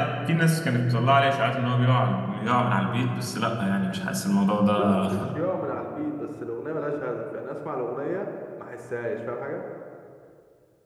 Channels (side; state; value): both; identical; correlation 1.00